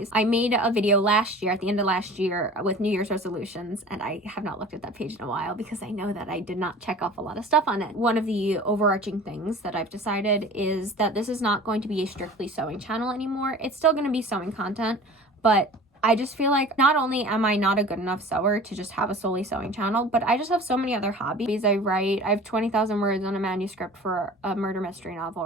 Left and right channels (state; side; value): normal; both; correlation 0.42